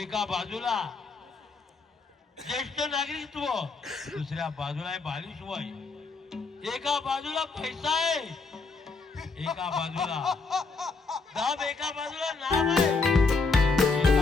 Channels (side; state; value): right; quieter; 4.1 dB